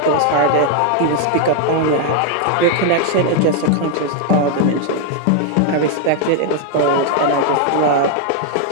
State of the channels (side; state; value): both; different; correlation 0.00